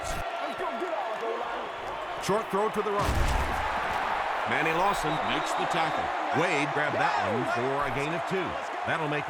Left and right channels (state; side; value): identical; both; correlation 1.00